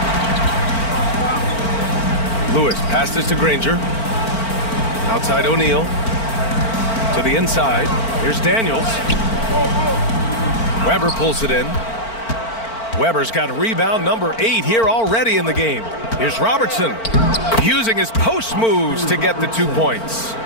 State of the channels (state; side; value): late; right; 4.4 ms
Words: Lewis passes to Granger. Outside O'Neal. To the inside. Here's Daniels. Weber pulls it in. Weber's got rebound number 8 here already in the game. Here's Robertson. Using his post moves to get the 2 points.